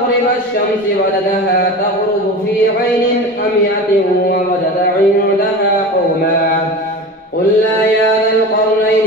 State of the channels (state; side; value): normal; both; correlation 0.31